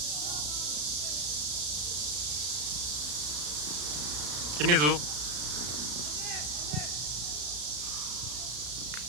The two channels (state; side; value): late; left; 34 ms